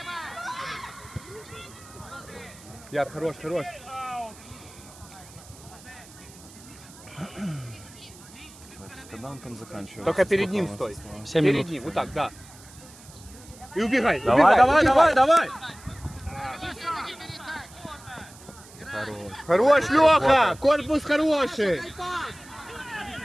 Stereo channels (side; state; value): right; noise; hiss, 21 dB below the sound